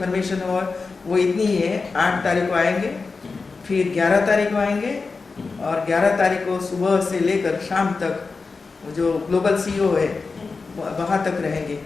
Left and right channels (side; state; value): right; quieter; 4.3 dB